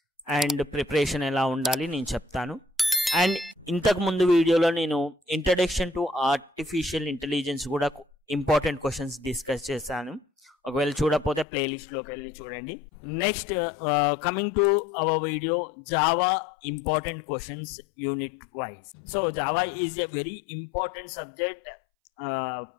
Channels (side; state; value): right; drops out; at 11.5 s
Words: అండ్ ప్రిపరేషన్ ఎలా ఉండాలి నేను చెప్తాను. అండ్ ఇంతకుముందు వీడియోలో నేను ఇంట్రడక్షన్ టు ఆర్టిఫిషియల్ ఇంటెలిజెన్స్ కూడా ఇంపార్టెంట్ క్వశ్చన్స్ డిస్కస్ చేశాను. ఒకవేళ చూడకపోతే ప్లేలిస్ట్లోకి వెళ్ళి చూడండి. Next coming to our video, Java important questions unit wise. So Java is a very important subject.